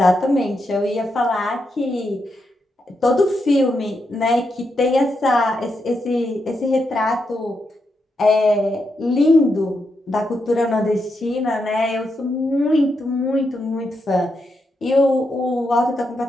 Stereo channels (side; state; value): both; normal; correlation 0.83